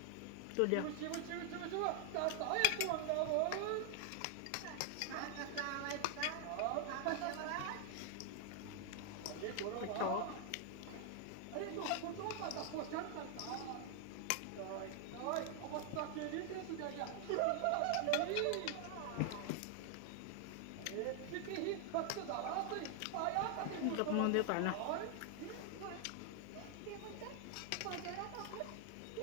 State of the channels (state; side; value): different; both; correlation 0.00